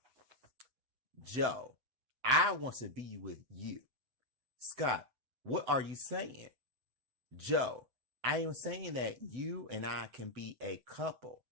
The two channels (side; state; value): left; late; 7.8 ms